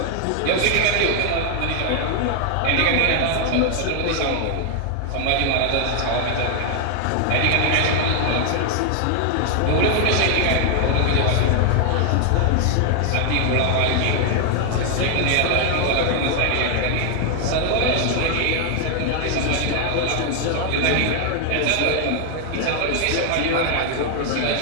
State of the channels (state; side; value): different; both; correlation 0.00